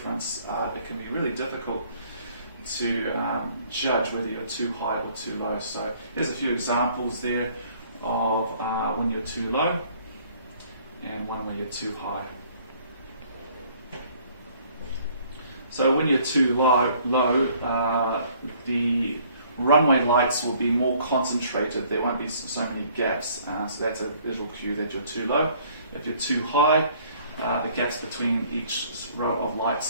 it can be really difficult to judge whether you're too high or too low. So here's a few examples there of when you're too low and one when you're too high. So when you're too low, the runway lights will be more concentrated. There won't be so many gaps, so that's a visual cue that you're too low. If you're too high, the gaps between each row of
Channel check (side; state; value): both; inverted; correlation -0.59